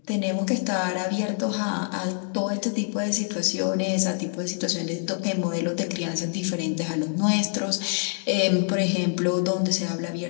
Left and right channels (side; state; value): right; silent; 61 dB below the other